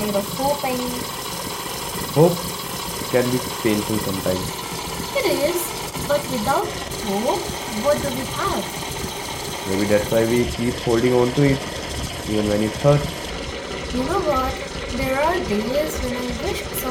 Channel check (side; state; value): both; identical; correlation 1.00